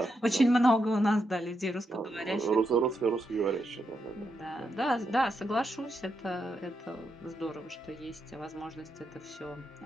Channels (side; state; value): both; normal; correlation 0.83